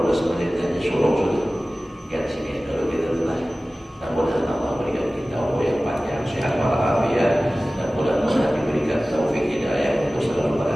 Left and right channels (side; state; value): both; normal; correlation 0.97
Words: menit aja suruh sudah. Kan sini kalau kita telah. Dan mudah-mudahan Allah berikan kita umur yang panjang, sehat walafiat, dan mudah-mudahan diberikan taufik hidayah untuk selalu